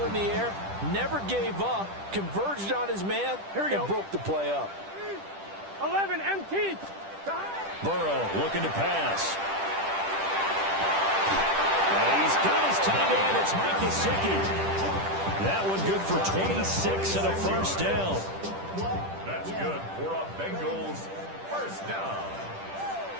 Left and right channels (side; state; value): left; late; 10 ms